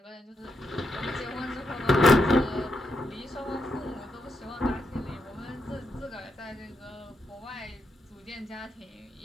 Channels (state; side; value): normal; both; correlation 0.81